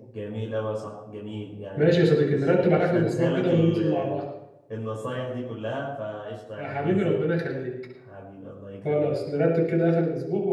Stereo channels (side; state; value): both; identical; correlation 1.00